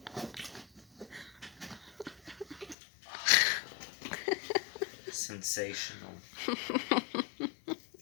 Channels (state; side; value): drops out; right; at 2.8 s